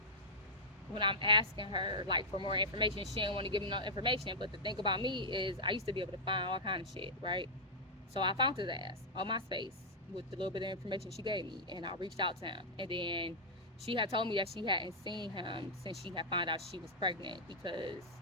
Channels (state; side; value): normal; both; correlation -0.09